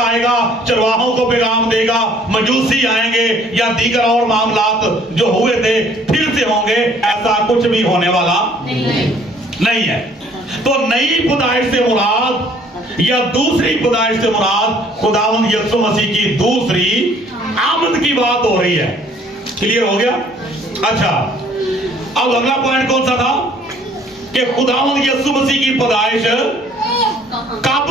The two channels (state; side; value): normal; both; correlation 0.58